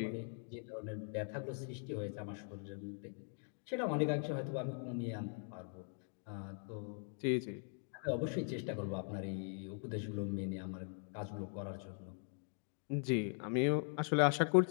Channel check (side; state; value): right; silent; 50 dB below the other